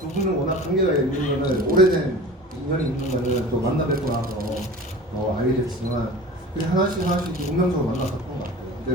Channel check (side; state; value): both; normal; correlation 0.38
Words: 분은 워낙 관계가 있는 거는 오래된 인연이 있는 거는 또 만나 뵙고 나서 알게 됐지만 그냥 하나씩 운명적으로 만나서 그런 것 같아요.